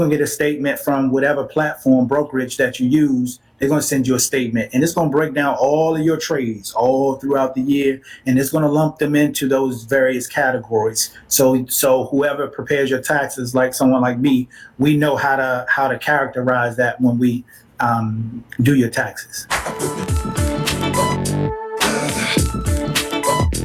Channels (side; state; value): both; identical; correlation 1.00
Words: to get a statement from whatever platform brokerage that you use. They're going to send you a statement, and it's going to break down all of your trades all throughout the year, and it's going to lump them into those various categories. So whoever prepares your taxes, like someone like me, we know how to characterize that when we do your taxes.